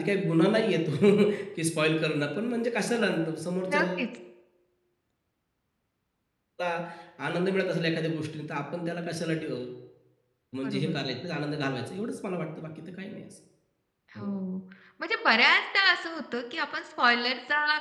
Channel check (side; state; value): both; identical; correlation 1.00